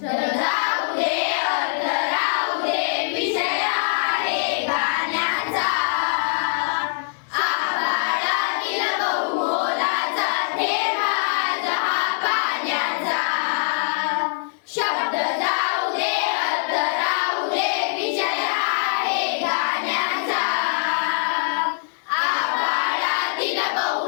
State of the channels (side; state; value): right; silent; 64 dB below the other